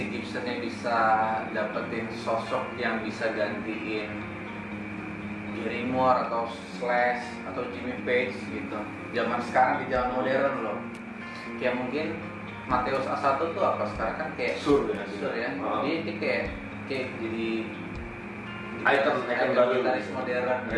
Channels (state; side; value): identical; both; correlation 1.00